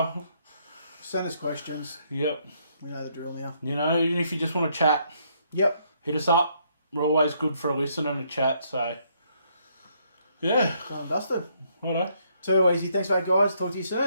Send us questions. Yep. We know the drill now. You know, even if you just want to chat, Yep. hit us up. We're always good for a listen and a chat, so yeah. Done and dusted. Righto. Too easy. Thanks, mate, guys. Talk to you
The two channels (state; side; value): inverted; both; correlation -0.71